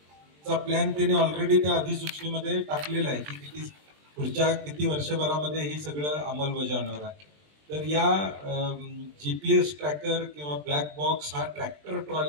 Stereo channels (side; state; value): left; late; 20 ms